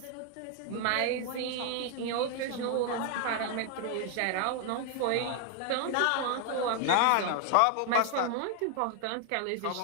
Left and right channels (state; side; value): different; both; correlation 0.00